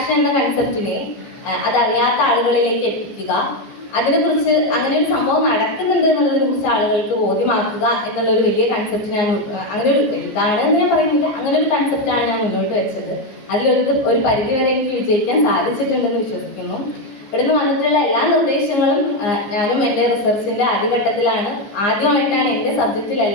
എന്ന കൺസെപ്റ്റിനെ അതറിയാത്ത ആളുകളിലേക്ക് എത്തിക്കുക, അതിനെക്കുറിച്ച് അങ്ങനെ ഒരു സംഭവം നടക്കുന്നുണ്ട് എന്നുള്ളതിനെ കുറിച്ച് ആളുകൾക്ക് ബോധ്യമാക്കുക എന്നുള്ളൊരു വലിയ കൺസെപ്റ്റ് ഞാൻ അങ്ങനെ ഒരു ഇതാണെന്ന് ഞാൻ പറയുന്നില്ല, അങ്ങനെ ഒരു കൺസെപ്റ്റാണ് ഞാൻ മുന്നോട്ട് വെച്ചത്. അതിലൊരു പരിധിവരെ എനിക്ക് വിജയിക്കാൻ സാധിച്ചിട്ടുണ്ടെന്ന് വിശ്വസിക്കുന്നു. ഇവിടുന്ന് വന്നിട്ടുള്ള എല്ലാ നിർദ്ദേശങ്ങളും ഞാനും എൻ്റെ റിസർച്ചിൻ്റെ ആദ്യഘട്ടത്തിലാണ്, ആദ്യമായിട്ടാണ് എൻ്റെ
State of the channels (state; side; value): late; right; 15 ms